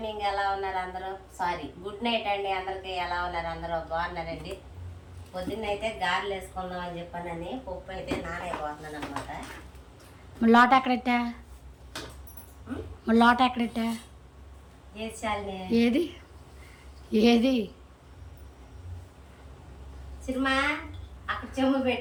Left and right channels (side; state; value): both; identical; correlation 1.00